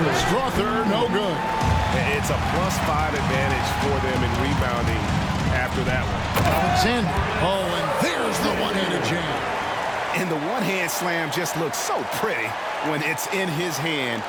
Strother, no good. It's a +5 advantage for them in rebounding after that one. Alexander. Oh, and there's the one-handed jam. And the one-hand slam just looks so pretty when it's in his hand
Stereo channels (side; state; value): both; identical; correlation 1.00